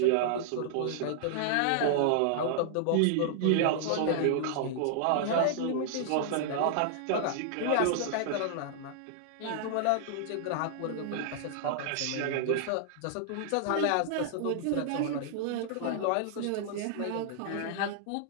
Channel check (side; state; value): both; different; correlation -0.01